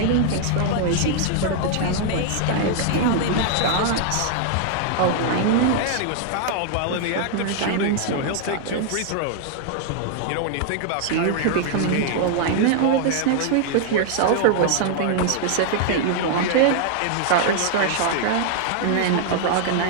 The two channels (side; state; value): both; different; correlation 0.00